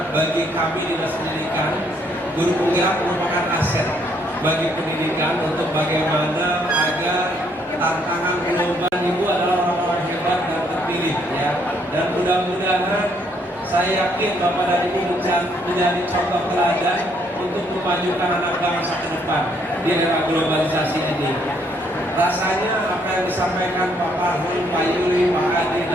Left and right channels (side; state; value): both; normal; correlation 0.69